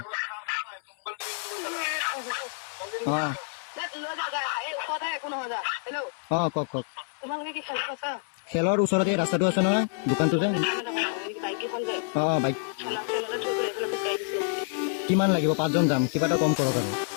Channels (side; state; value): right; silent; 59 dB below the other